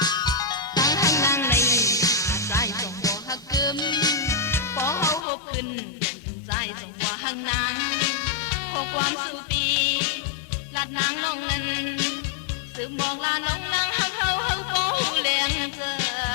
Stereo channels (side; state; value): right; drops out; at 5.2 s